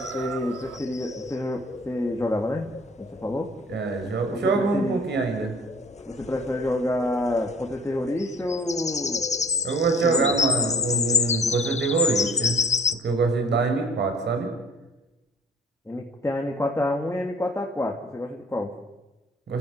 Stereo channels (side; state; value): both; normal; correlation 0.52